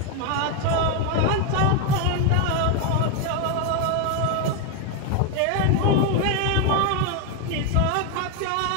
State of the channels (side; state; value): both; different; correlation 0.01